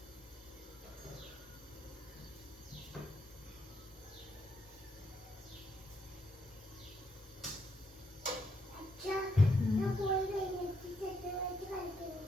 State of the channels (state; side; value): normal; both; correlation 0.76